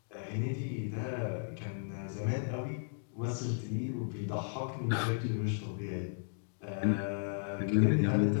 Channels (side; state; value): right; silent; digital silence